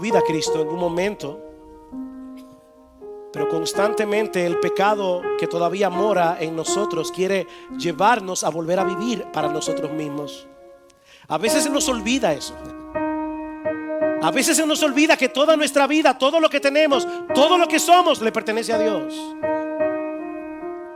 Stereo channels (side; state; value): both; identical; correlation 1.00